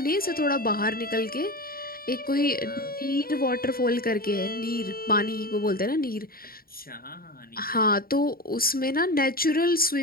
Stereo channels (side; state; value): right; late; 0.43 ms